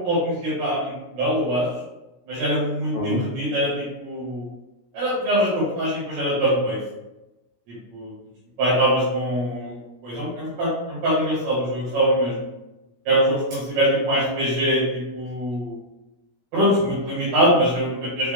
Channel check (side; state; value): left; late; 16 ms